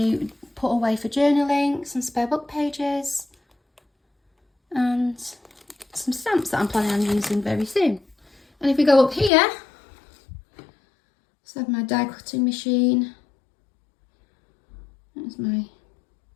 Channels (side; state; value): right; drops out; at 9.3 s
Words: put away for journaling, some spare book pages, and some stamps that I'm planning on using very soon. And if we go up here, so I have my die cutting machine. There's my